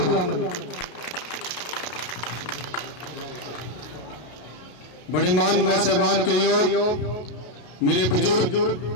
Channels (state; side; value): late; right; 33 ms